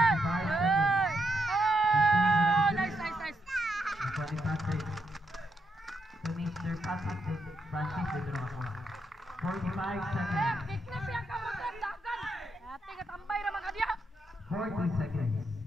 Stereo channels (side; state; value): both; normal; correlation 0.79